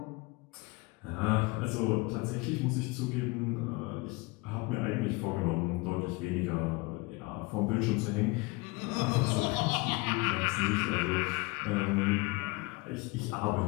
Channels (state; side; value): quieter; right; 25.2 dB